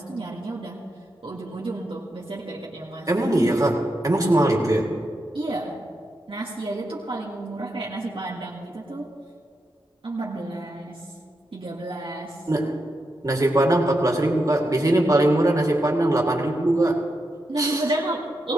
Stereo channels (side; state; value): both; normal; correlation 0.85